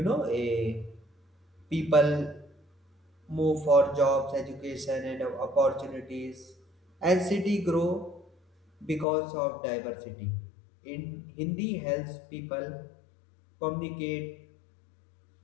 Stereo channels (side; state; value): right; drops out; at 9.1 s